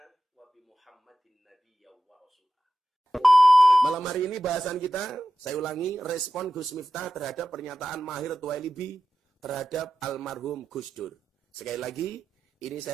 wa bi Muhammadin nabiyya wa rasulah. Malam hari ini bahasan kita, saya ulangi, respon Gus Miftah terhadap pernyataan Mahir Tuwailibi terhadap almarhum Gus Dur. Sekali lagi, ini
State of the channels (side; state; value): both; normal; correlation 0.92